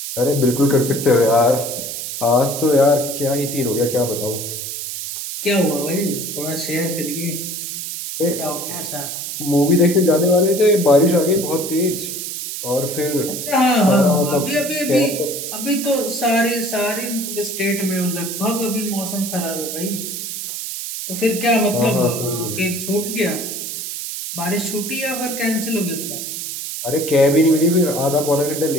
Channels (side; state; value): right; noise; hiss, 6 dB below the sound